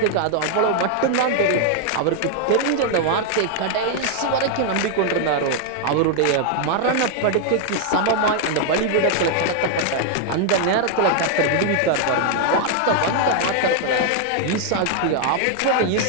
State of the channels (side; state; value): both; different; correlation 0.00